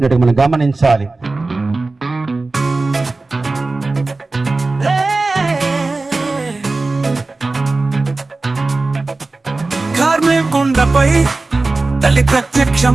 మనం గమనించాలి. కార్మెల్ కొండపై తల్లి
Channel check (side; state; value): left; quieter; 3.4 dB